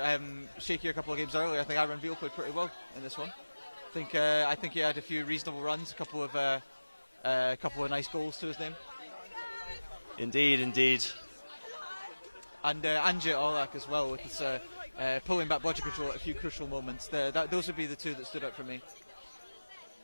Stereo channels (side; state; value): both; inverted; correlation -1.00